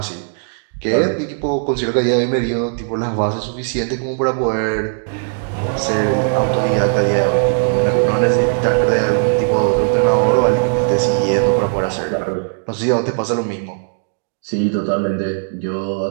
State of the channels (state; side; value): silent; left; 68 dB below the other